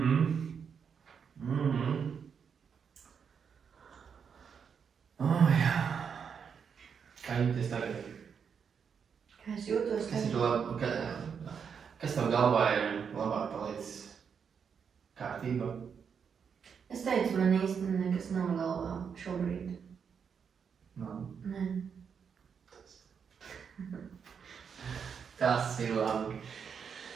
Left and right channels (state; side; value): quieter; left; 6.8 dB